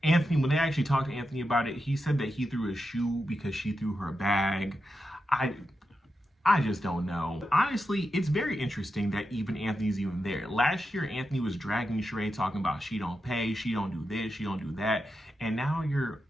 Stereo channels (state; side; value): normal; both; correlation 0.88